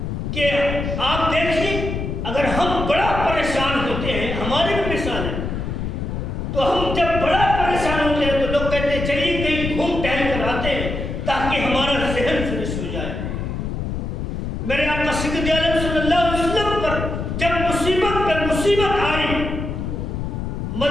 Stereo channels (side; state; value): left; noise; rumble, 4 dB below the sound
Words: کہ آپ دیکھیں اگر ہم بڑا پریشان ہوتے ہیں، ہماری بھی مثال ہے، تو ہم جب بڑا پریشان ہوتے ہیں تو لوگ کہتے ہیں چلیے کہیں گھوم ٹہل کر آتے ہیں تاکہ ہمارا ذہن فریش ہو جائے۔ میرے آقا سید عالم صلی اللہ علیہ وسلم پر جب مصیبت پر مصیبت آئی،